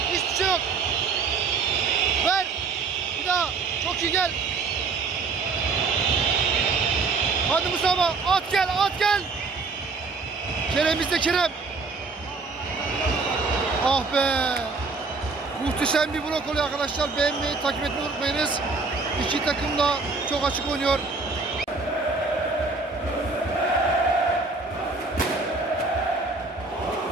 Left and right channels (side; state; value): left; quieter; 4.2 dB